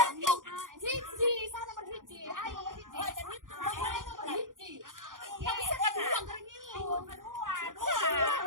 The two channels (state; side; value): late; left; 0.89 ms